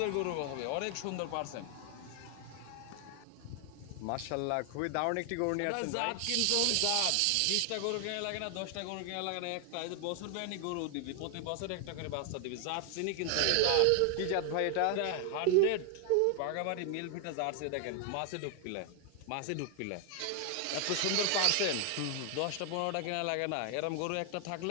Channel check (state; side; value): different; both; correlation 0.00